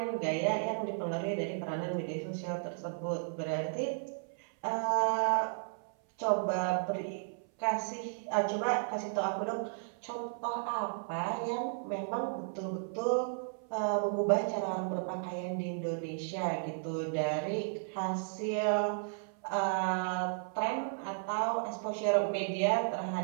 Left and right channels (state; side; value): silent; left; 55 dB below the other